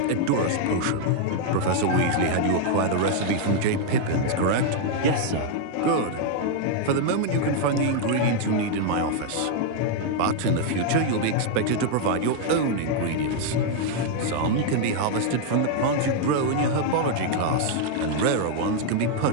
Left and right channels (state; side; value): different; both; correlation 0.00